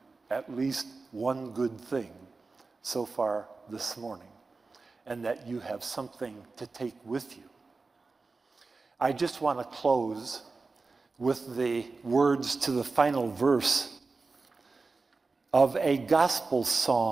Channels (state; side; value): quieter; left; 4.0 dB